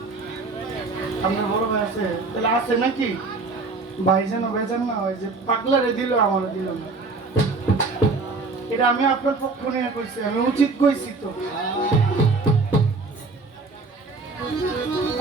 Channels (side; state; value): left; quieter; 3.8 dB